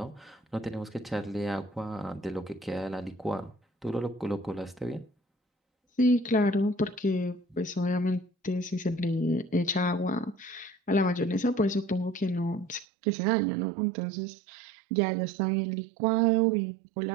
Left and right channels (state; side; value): drops out; left; at 12.9 s